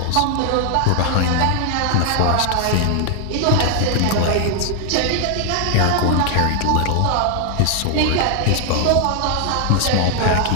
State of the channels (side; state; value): both; different; correlation 0.00